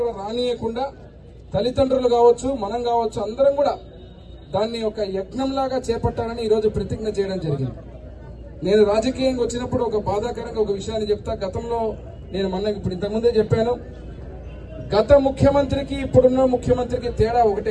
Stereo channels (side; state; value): both; identical; correlation 1.00